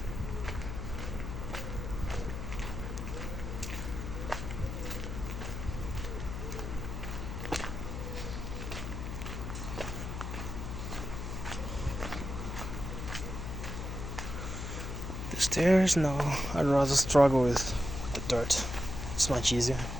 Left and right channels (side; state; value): left; noise; hum, 5 dB below the sound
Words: The stairs? No, I'd rather struggle with the dirt. It's much easier.